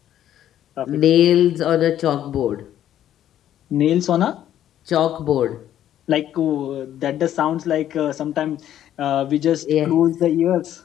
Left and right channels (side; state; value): right; quieter; 11.4 dB